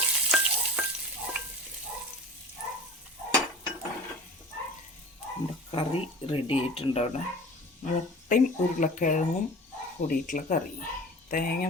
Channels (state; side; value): normal; both; correlation 0.39